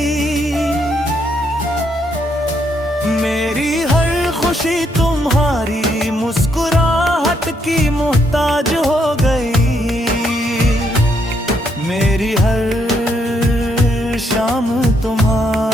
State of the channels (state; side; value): normal; both; correlation 0.74